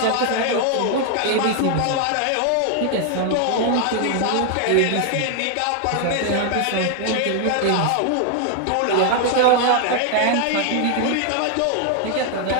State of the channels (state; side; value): different; both; correlation 0.00